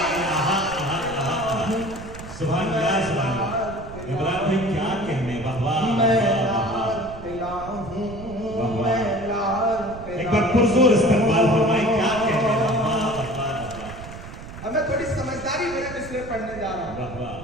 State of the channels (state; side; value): noise; right; rumble, 13 dB below the sound